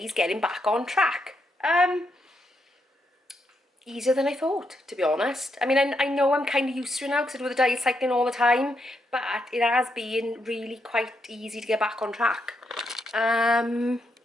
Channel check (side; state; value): both; normal; correlation 0.80